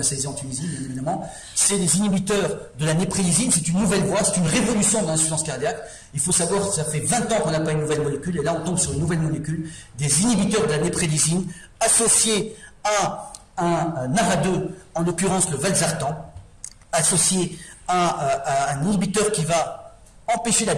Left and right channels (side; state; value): both; identical; correlation 1.00